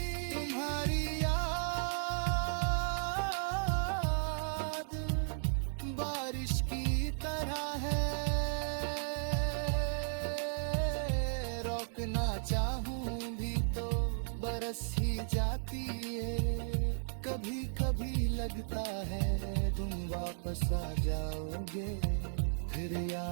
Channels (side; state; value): left; silent; digital silence